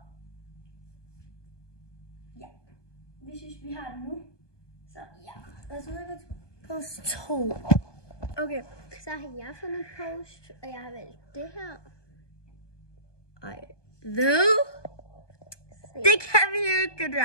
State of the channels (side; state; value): right; late; 1.2 ms